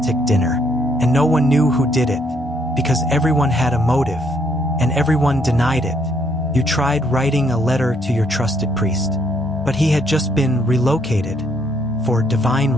dinner, and no one knew who did it, because everyone had a motive, and everyone denied it. You tried writing a letter to your trusted priest, but he had just been relocated for divine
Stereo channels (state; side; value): normal; both; correlation 0.70